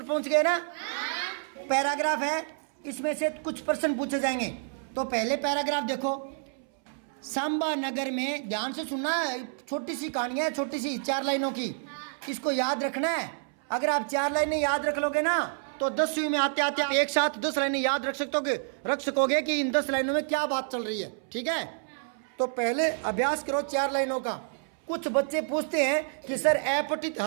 पहुँच गए ना। पैराग्राफ है, इसमें से कुछ प्रश्न पूछे जाएंगे। तो पहले पैराग्राफ देखो। सांबा नगर में, ध्यान से सुनना, छोटी सी कहानी है, छोटी सी 4 लाइनों की, इसको याद रखना है। अगर आप 4 लाइनें याद रख लोगे ना तो 10वीं में आते आते आप एक साथ 10 लाइनें याद रख सकोगे कि इन 10 लाइनों में क्या बात चल रही है। ठीक है, तो पहले अभ्यास करो 4 लाइनों का। कुछ बच्चे पूछते हैं कि सर अपठित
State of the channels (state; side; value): silent; left; 59 dB below the other